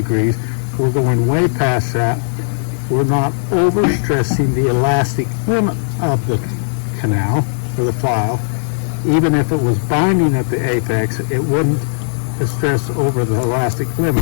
We're going way past that. We're not overstressing the elastic limit of the canal or the file. Even if it was binding at the apex, it wouldn't stress over the elastic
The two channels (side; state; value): right; silent; digital silence